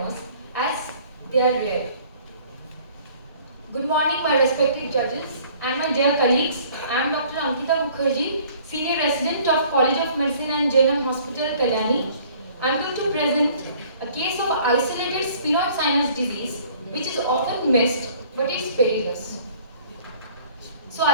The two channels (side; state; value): both; inverted; correlation -0.54